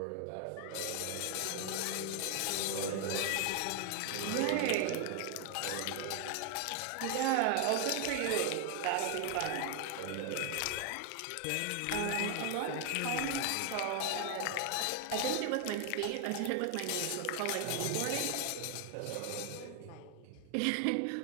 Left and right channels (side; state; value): both; different; correlation 0.00